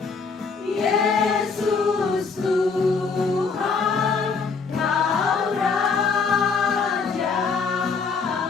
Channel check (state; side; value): quieter; right; 5.0 dB